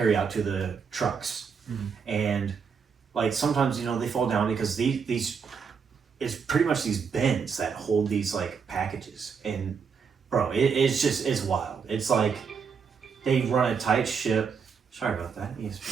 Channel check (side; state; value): left; quieter; 6.1 dB